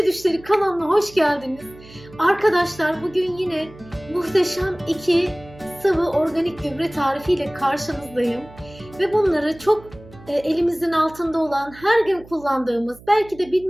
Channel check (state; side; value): noise; right; hum, 21 dB below the sound